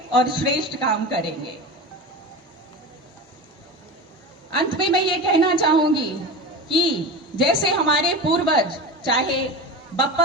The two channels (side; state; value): both; normal; correlation 0.27